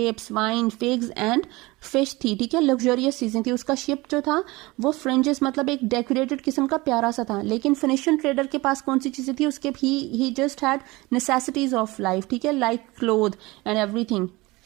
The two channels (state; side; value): quieter; left; 22.1 dB